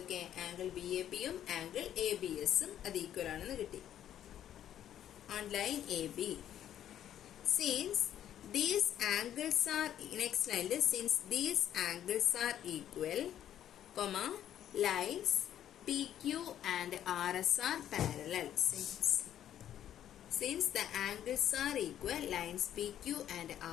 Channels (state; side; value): quieter; right; 10.9 dB